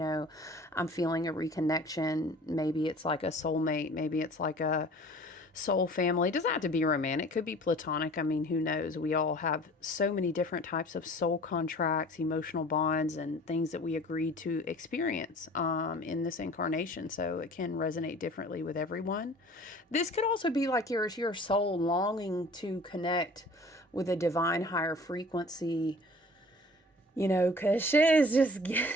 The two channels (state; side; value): normal; both; correlation 0.46